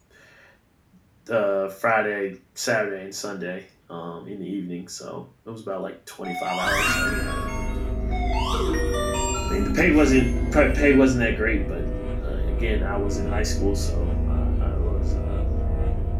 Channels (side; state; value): both; identical; correlation 1.00